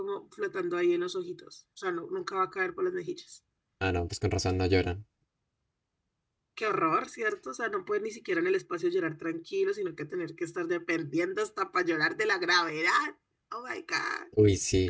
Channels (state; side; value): identical; both; correlation 1.00